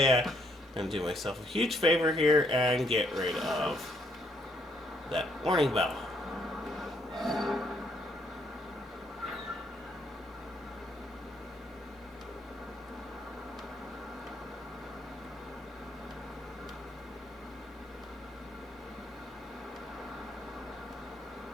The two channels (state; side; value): normal; both; correlation 0.71